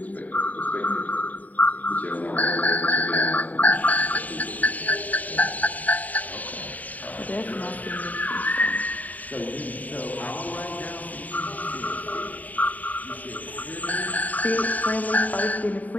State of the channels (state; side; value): late; right; 0.075 ms